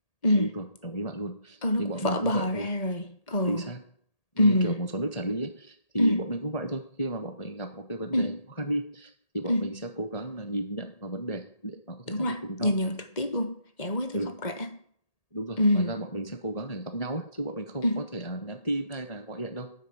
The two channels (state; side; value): late; right; 1.8 ms